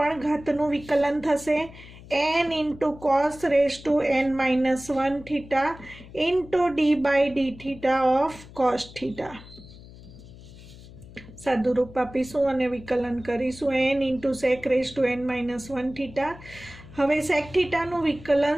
ઘાતનું વિકલન થશે n into cos raise to n minus 1 theta into d by d theta of cos theta. સાદુરૂપ આપીશું અને વિકલન કરીશું n into sec raise to n minus 1 theta. હવે સેક થીટાનું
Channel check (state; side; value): noise; left; hum, 18 dB below the sound